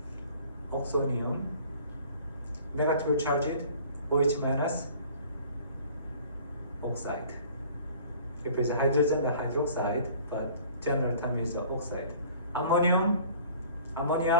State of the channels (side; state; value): both; inverted; correlation -0.50